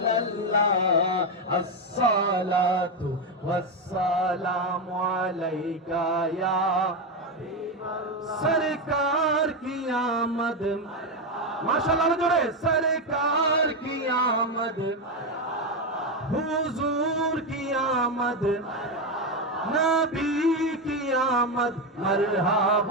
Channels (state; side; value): normal; both; correlation 0.09